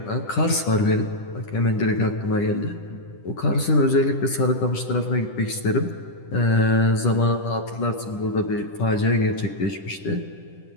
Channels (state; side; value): late; right; 10 ms